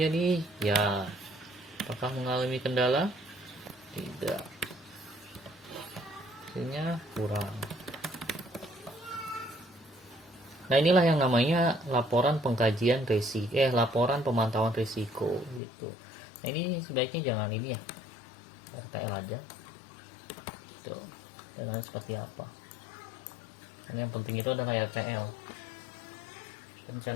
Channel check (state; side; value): drops out; right; at 15.6 s